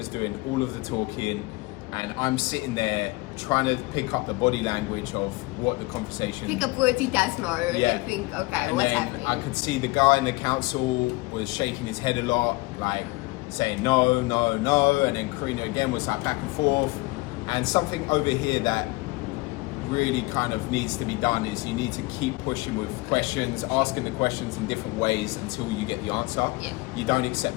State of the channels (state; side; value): quieter; right; 23.3 dB